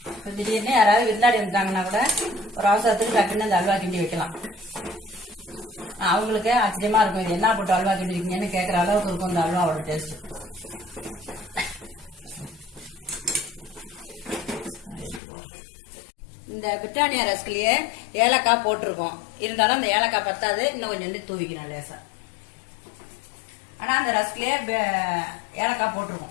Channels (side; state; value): right; drops out; at 15.2 s